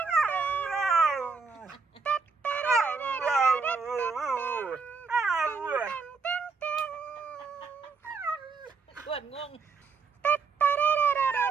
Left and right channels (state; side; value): quieter; left; 4.8 dB